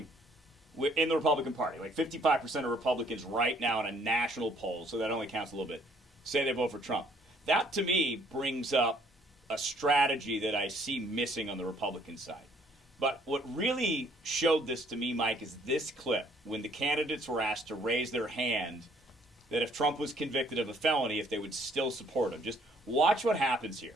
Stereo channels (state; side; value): normal; both; correlation 0.62